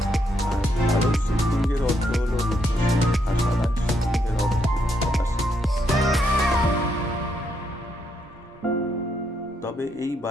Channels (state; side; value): normal; both; correlation 0.77